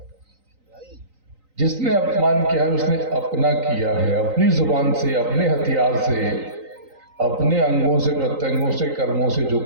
जिसने अपमान किया है उसने अपना किया है, अपनी जुबान से, अपने हथियार से, अपने अंगों से, प्रत्यंगों से, कर्मों से जो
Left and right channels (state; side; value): late; left; 3.9 ms